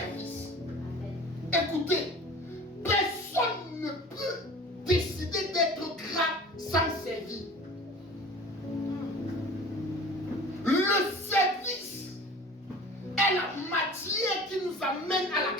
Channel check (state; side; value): normal; both; correlation 0.41